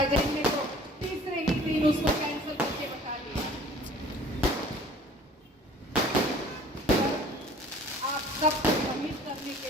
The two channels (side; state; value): both; normal; correlation 0.50